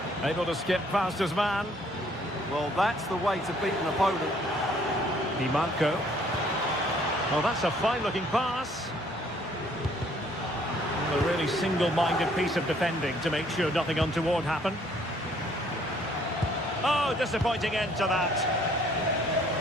Able to skip past his man. Well, that's the way to beat an opponent. Di Marco. Oh, that's a fine-looking pass. A really single-minded piece of defending to make sure nothing untoward happened. Oh, disappointing end to that.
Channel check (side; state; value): both; normal; correlation 0.62